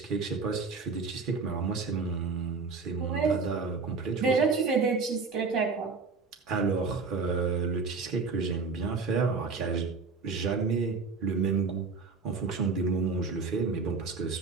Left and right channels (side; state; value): left; quieter; 4.6 dB